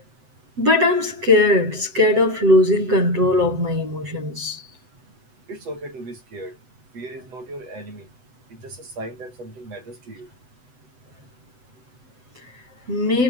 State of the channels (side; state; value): left; late; 8.0 ms